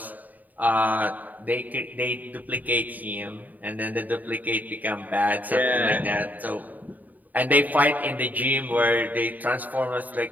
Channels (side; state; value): left; late; 0.082 ms